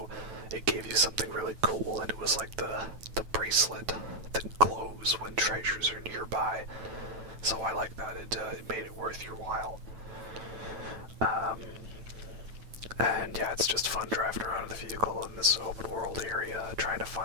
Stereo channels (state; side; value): late; left; 9.1 ms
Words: it gave you something really cool, and it was like the bracelet that glows when treasures are nearby. So I like that. It made it worth your while. And yeah, it's just fun driving around the vehicle in this open world area, trying to